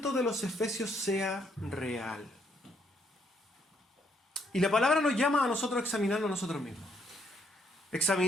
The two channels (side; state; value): both; normal; correlation 0.72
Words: de los efesios sea real. Y la palabra nos llama a nosotros a examinarnos a nosotros mismos.